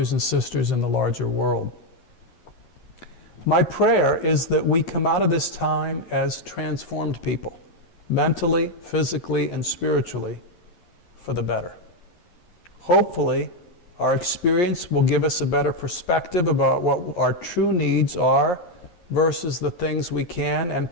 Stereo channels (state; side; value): late; right; 11 ms